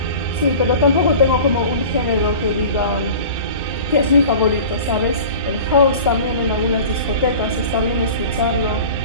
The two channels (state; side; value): inverted; both; correlation -0.39